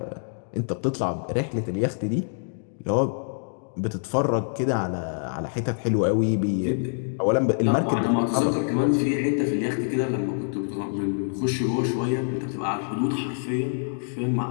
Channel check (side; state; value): right; silent; digital silence